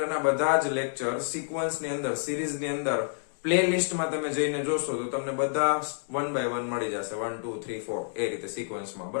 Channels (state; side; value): silent; right; digital silence